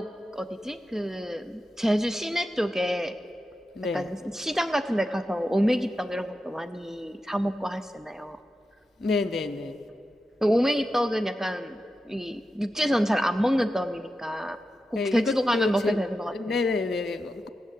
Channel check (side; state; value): both; normal; correlation 0.90